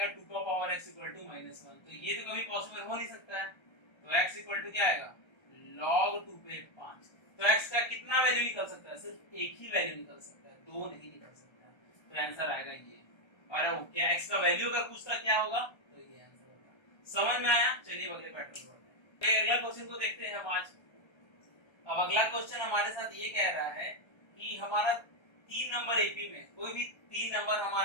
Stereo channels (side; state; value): right; late; 1.3 ms